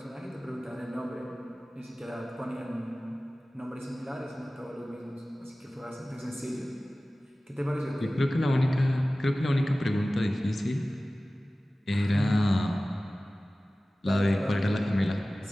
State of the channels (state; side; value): normal; both; correlation 0.97